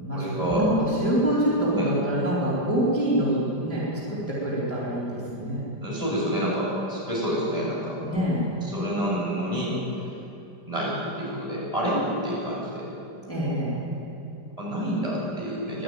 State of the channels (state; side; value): late; right; 5.0 ms